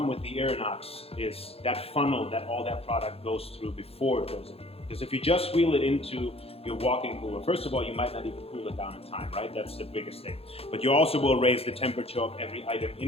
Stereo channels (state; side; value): late; right; 0.28 ms